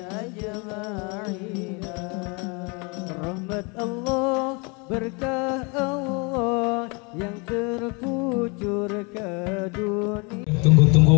ajma'in rahmat Allah berkah Allah yang terkucur ke dunia.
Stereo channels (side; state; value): right; quieter; 31.0 dB